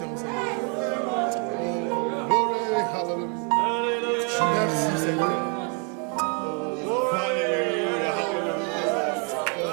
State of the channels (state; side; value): quieter; left; 37.4 dB